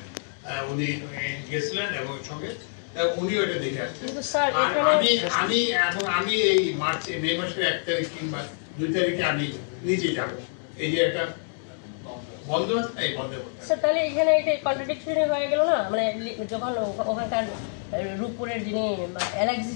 উনি গেছিলেন এবং সঙ্গে উনি ওটা দেখে আসছেন। আমি এই মে মাসের 1 তারিখ কিংবা 2 তারিখে আমি নিজে যাবো। এই যে একটা বন্ধ আছে, এই বন্ধ করতে। তাহলে এখানে একটা কন্ট্রাডিকশন হয়ে গেল না, মানে যখন ওখানকার রূপপুরের যিনি এলএক্সি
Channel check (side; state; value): right; silent; digital silence